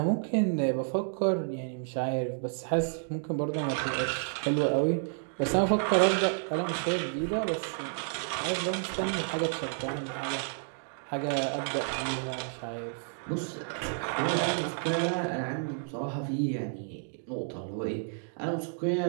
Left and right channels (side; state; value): left; silent; digital silence